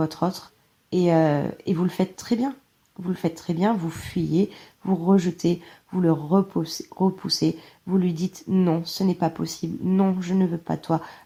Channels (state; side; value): identical; both; correlation 1.00